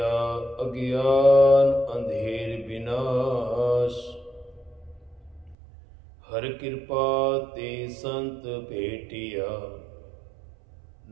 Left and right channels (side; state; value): left; drops out; at 5.6 s